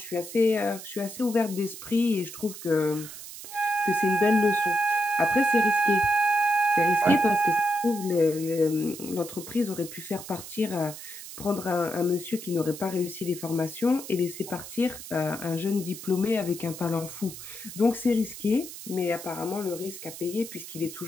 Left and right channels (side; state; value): right; noise; hiss, 12 dB below the sound